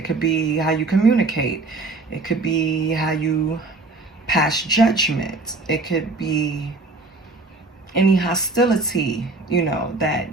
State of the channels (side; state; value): left; quieter; 3.4 dB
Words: could be how you communicate. It could be how you pass judgment. It could be any hostility, you know, that